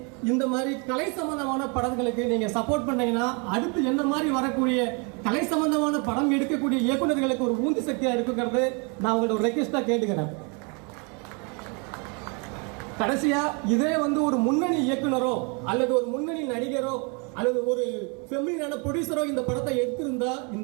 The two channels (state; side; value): quieter; left; 33.7 dB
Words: இந்த மாதிரி கலை சம்பந்தமான படங்களுக்கு நீங்க சப்போர்ட் பண்ணீங்கன்னா அடுத்து என்ன மாதிரி வரக்கூடிய கலை சம்பந்தமான படம் எடுக்கக்கூடிய இயக்குநர்களுக்கு ஒரு ஊந்து சக்தியா இருக்குங்கிறது நான் உங்களோட ஒரு ரெக்வெஸ்டா கேட்டுக்கிறேன். கடைசியா இதே வந்து ஒரு முன்னணி இயக்குனரோ அல்லது ஒரு முன்னணி நடிகரோ அல்லது ஒரு ஃபெமிலினான ப்ரொடியூசரோ இந்த படத்தை எடுத்திருந்தா